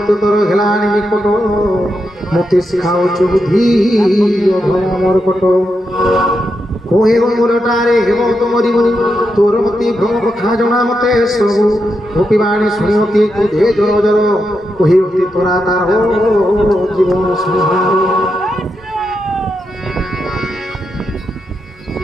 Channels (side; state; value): both; normal; correlation 0.85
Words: तर हेलानी निकट मते शिखाउछु बुद्धि अधम मोर कट कोहे मोरटारे हेम तुमरी तोर मति भ्रम कथा जना मते सबु गोपीवाणी शुणिमती क्रोधे जर जर कोहे तोरा तार जीवन संहार